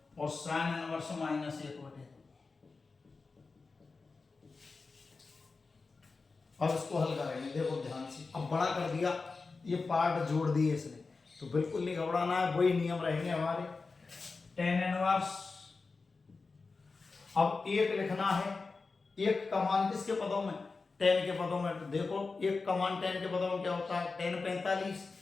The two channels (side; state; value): right; quieter; 4.2 dB